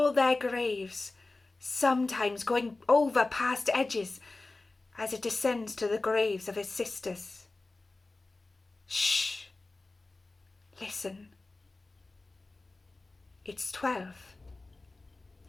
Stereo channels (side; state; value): right; quieter; 3.3 dB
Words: their graves, sometimes going over past edges as it descends to the graves of its sisters. Shh! Listen. It's 12,